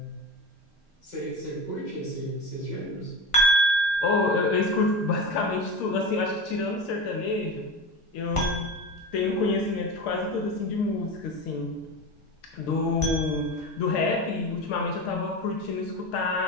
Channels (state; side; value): normal; both; correlation 0.25